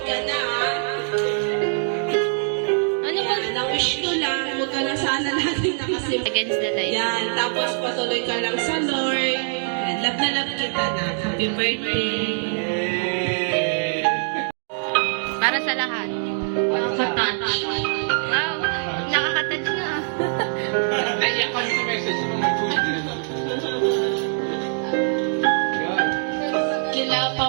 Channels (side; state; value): left; silent; digital silence